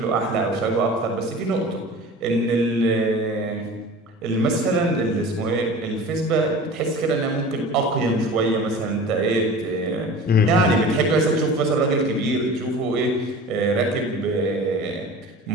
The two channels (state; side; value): normal; both; correlation 0.38